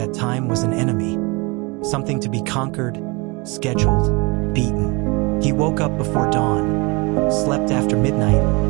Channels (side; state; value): left; quieter; 27.6 dB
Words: time was an enemy, something to be conquered, scheduled, beaten. He woke up before dawn, slept after midnight,